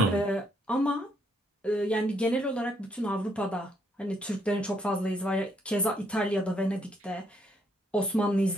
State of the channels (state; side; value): normal; both; correlation 0.72